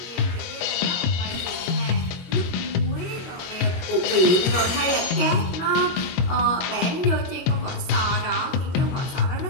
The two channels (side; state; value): right; late; 22 ms